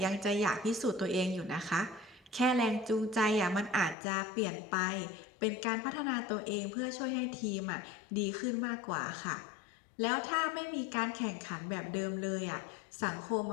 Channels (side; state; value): right; drops out; at 4.0 s